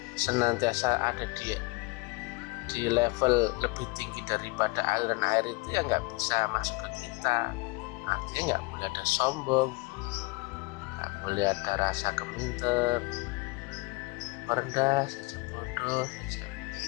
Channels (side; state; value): right; quieter; 25.9 dB